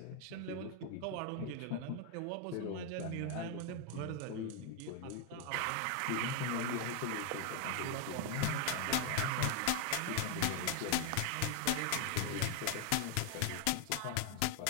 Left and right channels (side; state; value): both; different; correlation 0.00